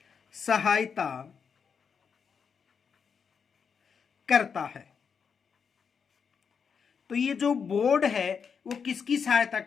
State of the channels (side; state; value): right; quieter; 6.4 dB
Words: सहायता करता है? तो ये जो बोर्ड है वो किसकी सहायता